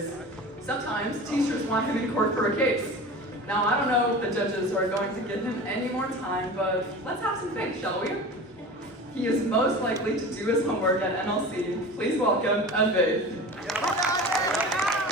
Sometimes teachers want him in court for a case. Now, I don't know if the judges are going to give him any more time, but let's have some faith, shall we? He is most likely to do his homework at NLC. Please welcome Advaith.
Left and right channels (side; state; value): both; normal; correlation 0.35